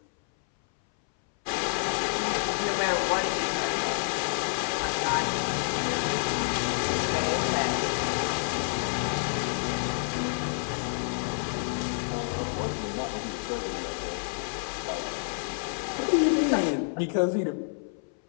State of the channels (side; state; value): right; silent; 59 dB below the other